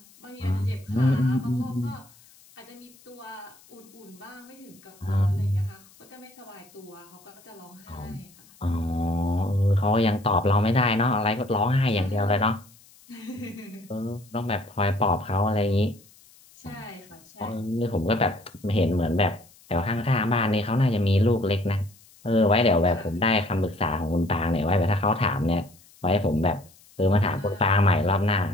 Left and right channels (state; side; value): noise; left; hiss, 27 dB below the sound